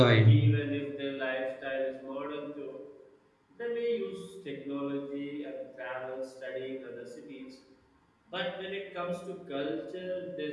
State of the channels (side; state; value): both; identical; correlation 1.00